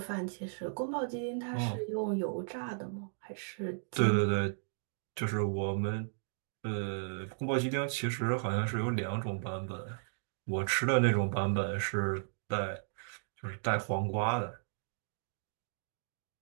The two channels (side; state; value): left; silent; digital silence